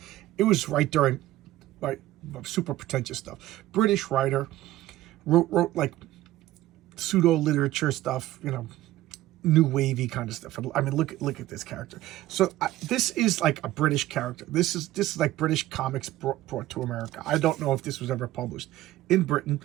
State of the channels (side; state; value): left; quieter; 15.4 dB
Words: It was right during like super pretentious stuff. British writer, wrote like pseudo literature stuff, new wavy kind of stuff. I mean, look at this character. So this is like a British character. This is like British comics brought to America. I don't know if this was ever published in Britain,